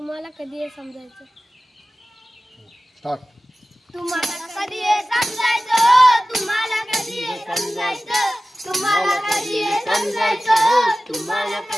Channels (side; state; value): both; normal; correlation 0.96